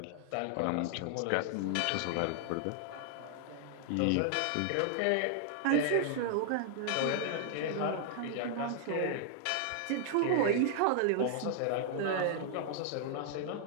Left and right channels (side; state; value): both; different; correlation 0.00